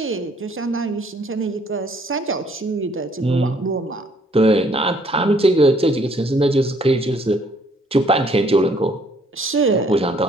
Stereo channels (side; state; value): both; normal; correlation 0.64